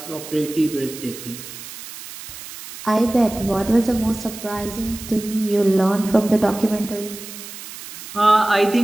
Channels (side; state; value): right; noise; hiss, 13 dB below the sound